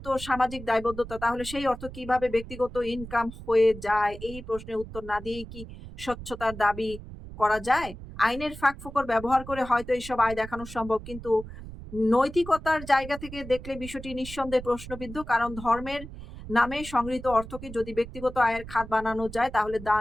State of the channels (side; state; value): right; noise; rumble, 13 dB below the sound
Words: সামাজিক দায়বদ্ধতা। তাহলে সেই অর্থ কিভাবে ব্যক্তিগত ইনকাম হয়ে যায়? এই প্রশ্নের উত্তর না দিয়েই কি স্বচ্ছতার দাবি করা যায়? আইনের ফাঁকফোকর ব্যবহার করে হয়তো এইসব আয় দেখানো সম্ভব, কিন্তু নৈতিকতার জায়গা থেকে দেখলে বিষয়টি নিঃসন্দেহে প্রশ্নবিদ্ধ। কারণ ধর্মের নামে সংগৃহীত অর্থকে যদি ব্যক্তিগত আয়ের খাত বানানো যায় তাহলে